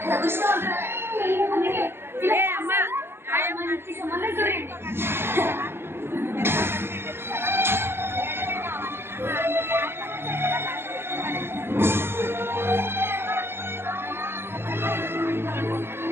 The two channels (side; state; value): left; late; 0.11 ms